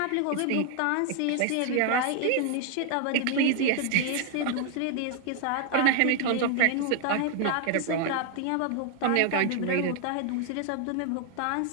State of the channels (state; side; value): different; both; correlation 0.00